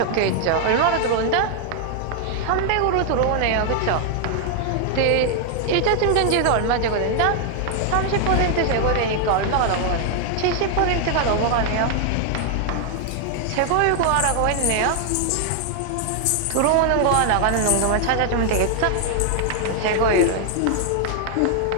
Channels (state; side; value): different; both; correlation 0.00